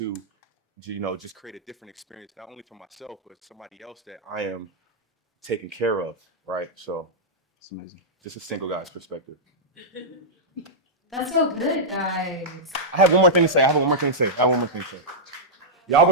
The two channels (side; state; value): both; normal; correlation -0.10